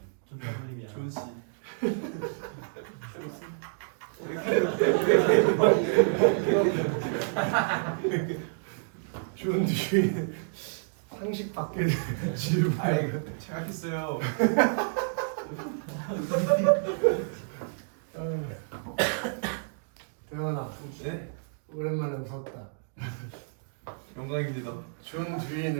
존댓말이야. 존 씨. 존 듀이. 상식 밖의 질문. 생각했어요. 대현아, 네. 오랜만에 웃었다. 영광입니다. 존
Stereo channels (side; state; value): left; silent; digital silence